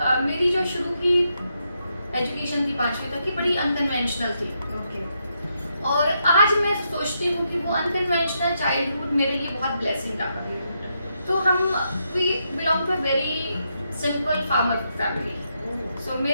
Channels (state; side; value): inverted; both; correlation -0.81